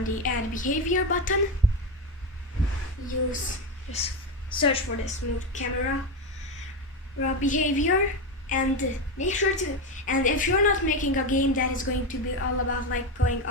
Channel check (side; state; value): both; normal; correlation 0.13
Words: the add behavior button, you just search for the smooth camera behavior, and make sure to, and if you're not making a game that is going to be all about like going